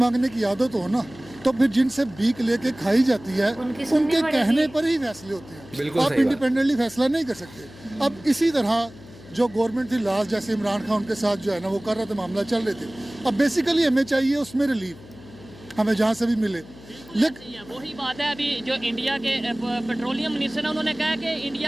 की आदत हो ना, तो फिर जिनसे भीख लेके खाई जाती है उनके कहने पर ही फैसले होते हैं। आप इंडिपेंडेंटली फैसला नहीं कर सकते। अब इसी तरह जो गवर्नमेंट थी लास्ट, जैसे इमरान खान उनके साथ जो है ना वो कर रहा था, मामला चल रहे थे। अब बेसिकली हमें चाहिए उसमें रिलीफ, हमें जहाँ से भी मिले। लेकिन वही बात है, अभी जो इंडिया के पेट्रोलियम मिनिस्टर है उन्होंने कहा कि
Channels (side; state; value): left; noise; hum, 20 dB below the sound